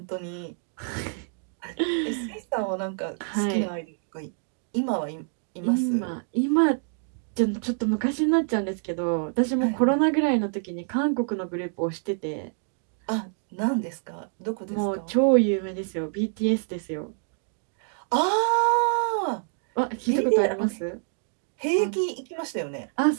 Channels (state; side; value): silent; left; 60 dB below the other